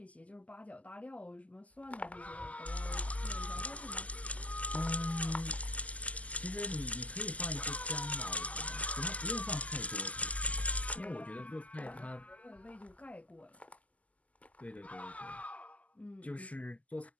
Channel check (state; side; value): late; right; 0.071 ms